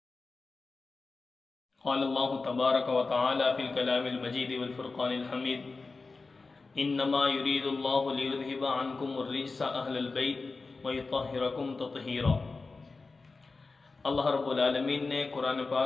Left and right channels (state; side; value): quieter; right; 3.9 dB